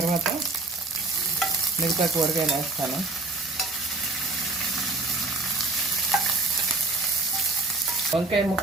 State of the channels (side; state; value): left; quieter; 3.3 dB